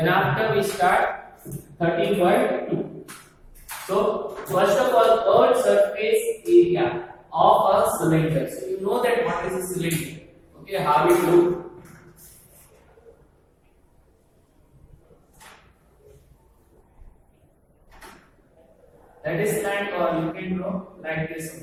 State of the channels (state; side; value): identical; both; correlation 1.00